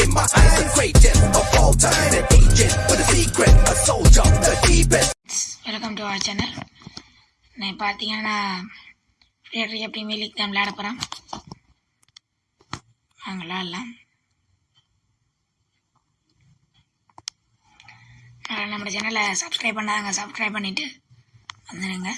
in my eyes? The greatest of all time. An agent with a secret, a soldier, the deepest. Welcome to our channel. நான் பார்த்தீங்கன்னா premier league தான் விளையாட போகிறேன். வாங்கலாம் எல்லாம் நம்ம சேனலை subscribe பண்ணாங்க, சப்ஸ்கிரைப் பண்ணிவிட்டு வந்துடுங்க.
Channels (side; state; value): both; identical; correlation 1.00